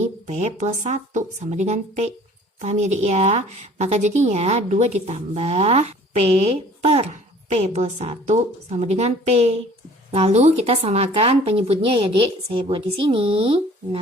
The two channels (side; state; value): both; normal; correlation 0.51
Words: plus 1. Sama dengan P. Paham ya, Dik ya? Maka jadinya 2 ditambah P per P plus 1 sama dengan P. Lalu kita samakan penyebutnya ya dek, saya buat di sini.